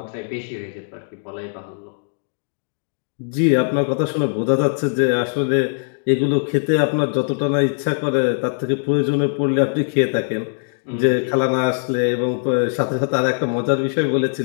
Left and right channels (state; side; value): silent; right; digital silence